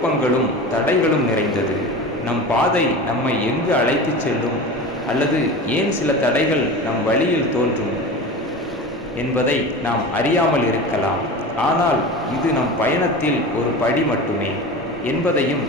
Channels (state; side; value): normal; both; correlation 0.31